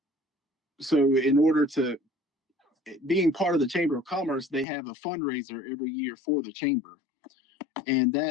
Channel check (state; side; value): drops out; right; at 4.7 s